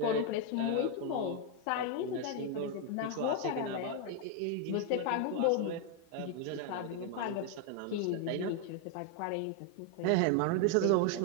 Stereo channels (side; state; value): both; different; correlation 0.01